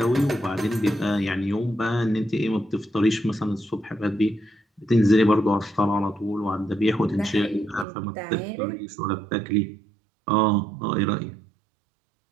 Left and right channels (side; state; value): left; drops out; at 7.9 s